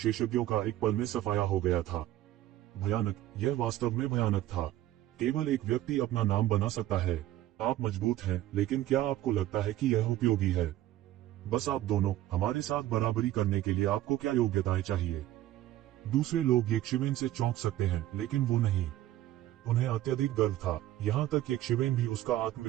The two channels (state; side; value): quieter; left; 14.2 dB